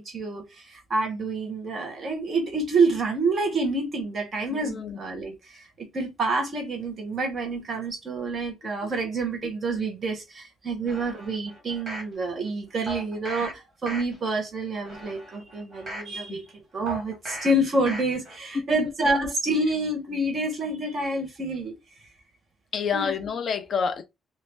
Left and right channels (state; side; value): normal; both; correlation 0.59